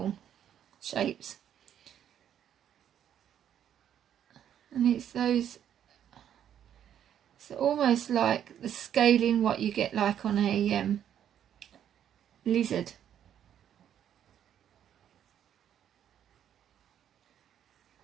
shapes. And it's those, it's almost like the scaling what you get like on a lizard.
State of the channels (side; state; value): left; quieter; 9.9 dB